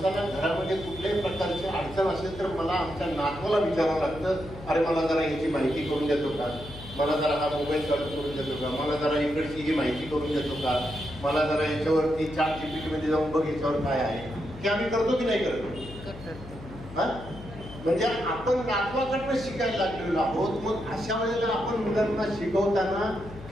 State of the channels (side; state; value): left; noise; hum, 14 dB below the sound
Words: घरामध्ये कुठल्याही प्रकारची अडचण असेल तर मला आमच्या नातवाला विचारावं लागतं, अरे मला जरा याची माहिती करून देतो का, मला जरा हा मोबाईल चालू करून देतो का, मला जरा इकडची ही माहिती करून देतो का, मला जरा याच्यावरती ChatGPT मध्ये जाऊन बघ याच्यावर काय आहे. की आम्ही करतो की नाही करतो? हा, म्हणजे आपण नातवाकडनं शिकायला लागलेलो आहोत. मग अशा वेळेला आपण मुलांना शिकवताना